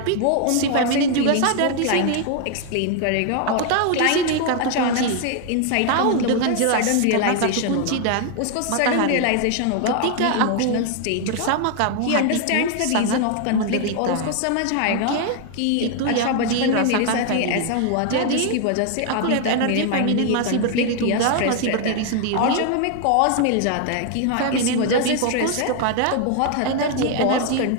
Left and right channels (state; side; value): different; both; correlation 0.00